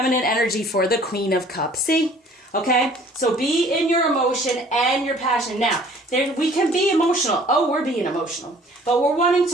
energy, for the Queen of Cups. See? Okay? So be in your emotion and your passion. Now, We can be emotional. Oh, we're being emotional. But we're wanting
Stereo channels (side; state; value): both; normal; correlation 0.54